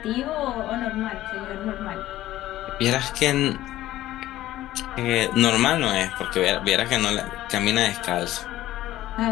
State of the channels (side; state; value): right; quieter; 14.8 dB